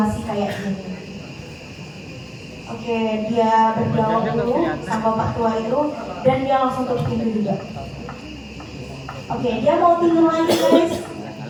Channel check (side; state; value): both; identical; correlation 1.00